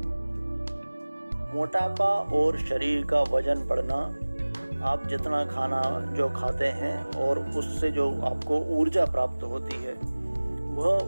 मोटापा और शरीर का वजन बढ़ना, आप जितना खाना जो खाते हैं और उससे जो आपको ऊर्जा प्राप्त होती है,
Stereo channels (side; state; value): both; inverted; correlation -1.00